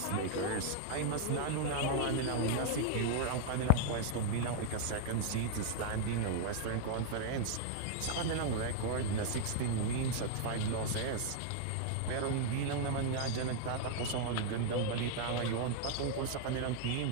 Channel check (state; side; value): different; both; correlation -0.01